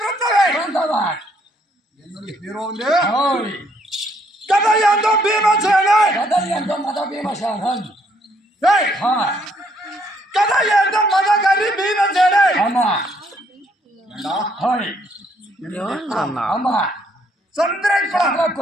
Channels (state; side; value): normal; both; correlation 0.69